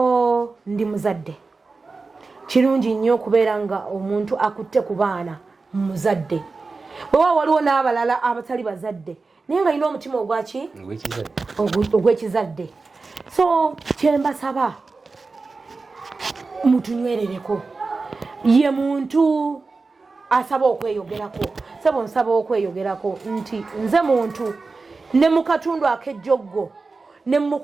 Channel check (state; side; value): quieter; left; 4.0 dB